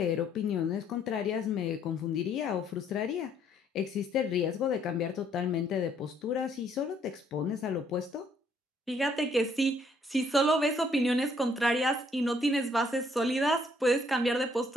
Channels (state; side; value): normal; both; correlation 0.66